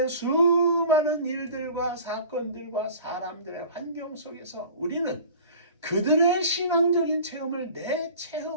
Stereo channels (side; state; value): both; inverted; correlation -0.42